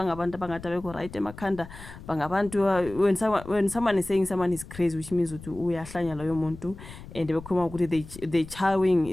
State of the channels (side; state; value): left; noise; rumble, 15 dB below the sound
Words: abangathi abekho right emakhanda, bangabantu when someone is saying someone is crazy, which means ukuthi uyahlanya loyo muntu, and bekhuluma ukuthi they